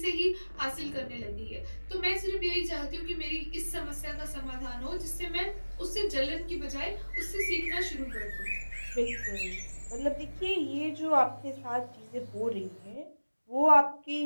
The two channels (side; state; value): both; inverted; correlation -1.00